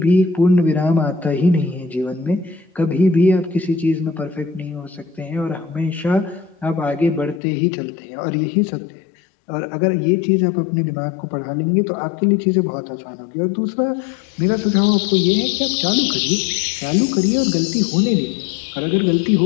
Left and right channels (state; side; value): drops out; right; at 7.4 s